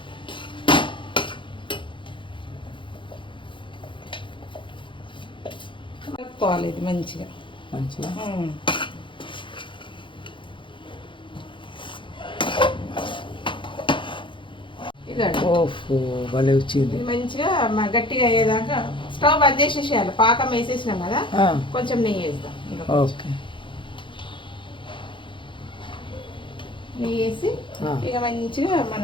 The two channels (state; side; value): late; right; 0.24 ms